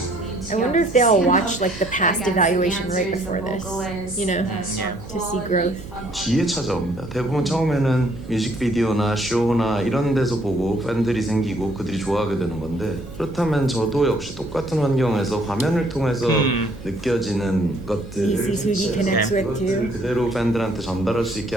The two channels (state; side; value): noise; right; hum, 16 dB below the sound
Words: I wonder if they all watched like the past evaluation right before this, you know, to see growth. 뒤에 찾아옵니다. 대부분 처음에는 뮤직비디오나 쇼나 이런 데서 보고 팬들이 생기고 그들이 좋아하게 되는 건데, 그렇다면 저도 역시 똑같은 환경에서 화면을 통해서 느껴지는 것들을 그대로 팬들한테 전달할 수 있게